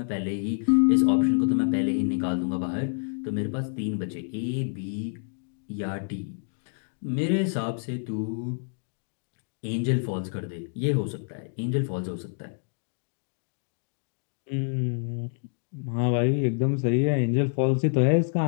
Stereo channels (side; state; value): right; silent; digital silence